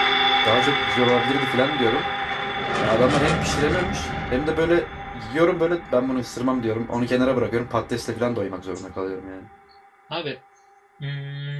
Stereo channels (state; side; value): identical; both; correlation 1.00